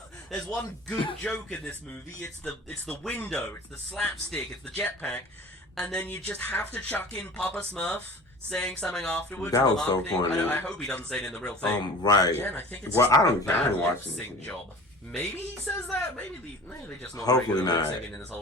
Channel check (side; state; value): both; normal; correlation 0.40